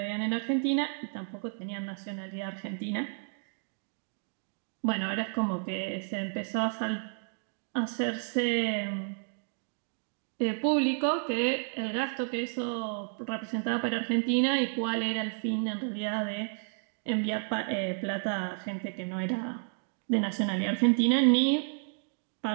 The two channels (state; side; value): silent; left; 57 dB below the other